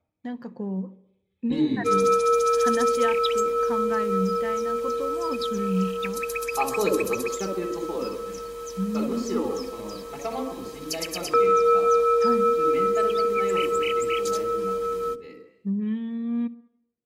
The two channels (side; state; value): both; identical; correlation 1.00